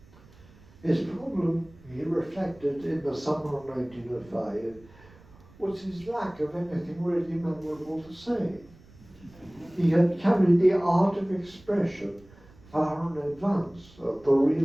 His problem he reflected in the summer of 1905 was his lack of anything really memorable to say. He had carried the art of expression far in advance of the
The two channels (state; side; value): noise; right; rumble, 25 dB below the sound